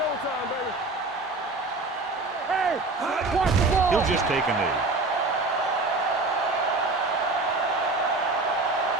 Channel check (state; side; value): quieter; left; 3.3 dB